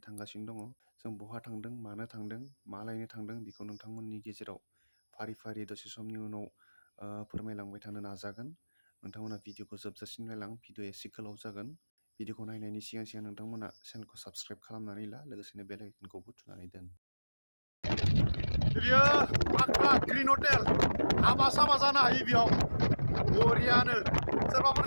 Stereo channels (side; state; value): both; inverted; correlation -1.00